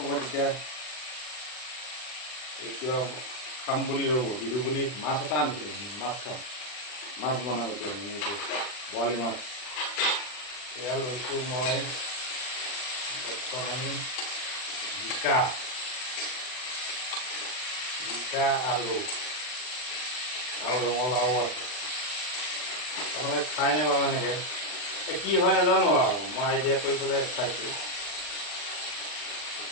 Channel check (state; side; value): late; right; 39 ms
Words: এতিয়া কিবা খাম বুলি ৰ'ব, বিহু বুলি মাছ এটা আনিছিলোঁ, মাছ খাম, মাছ বনাম এতিয়া এইটো বৰালি মাছ। এয়া লৈছোঁ মই বৰ্তমান জিকা, আলু আৰু ৰঙালাও আছে। আপোনালোকে খাই নাই বাৰু এনেকৈ, কি হয় নাজানো আৰু, মই আইডিয়া কৰি পেলাই চাইছোঁ,